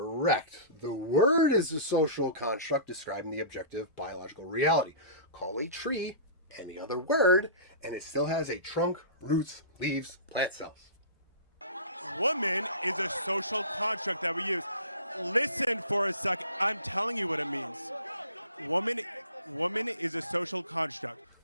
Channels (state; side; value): inverted; both; correlation -0.38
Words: The word is a social construct describing the objective biological reality. Call a tree any other word, and it still has a trunk, roots, leaves, plant cells. Woman is a social construct that we use. Listen for a second. I'm telling you what it means. Woman is a social construct.